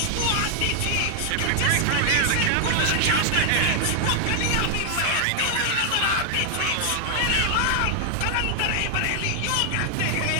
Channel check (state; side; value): different; both; correlation 0.00